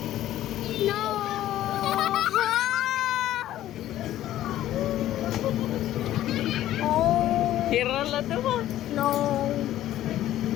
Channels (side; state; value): right; quieter; 13.3 dB